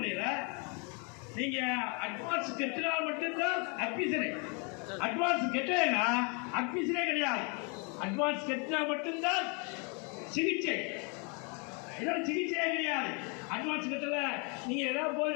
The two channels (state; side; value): quieter; right; 34.4 dB